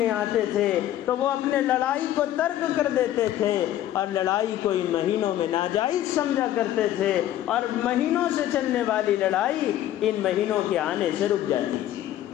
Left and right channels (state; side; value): quieter; right; 12.6 dB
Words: آتے تھے تو وہ اپنے لڑائی کو ترک کر دیتے تھے، اور لڑائی کو ان مہینوں میں ناجائز سمجھا کرتے تھے، اور مہینوں سے چلنے والی لڑائی ان مہینوں کے آنے سے رک جاتی تھی۔